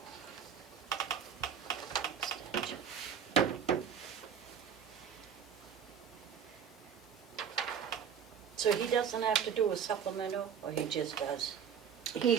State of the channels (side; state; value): left; quieter; 7.6 dB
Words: Extension. So he doesn't have to do a supplemental, or he just does?